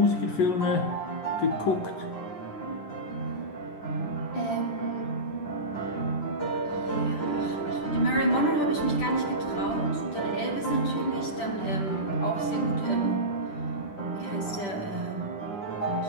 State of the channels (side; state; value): right; late; 10 ms